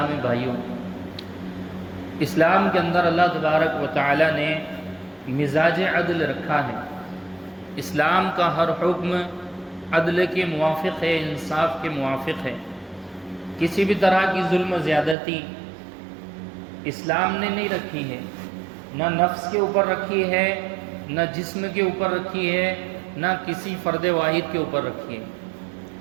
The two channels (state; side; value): drops out; left; at 15.2 s